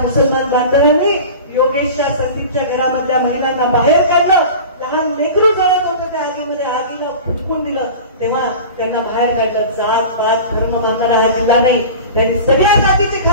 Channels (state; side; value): inverted; both; correlation -0.35